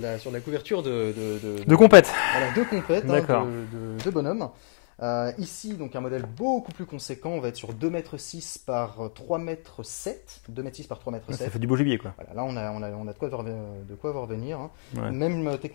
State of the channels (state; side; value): silent; right; 61 dB below the other